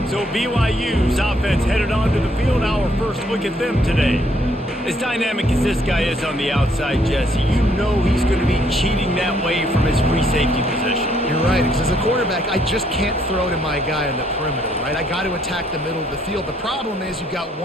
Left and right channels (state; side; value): normal; both; correlation 0.69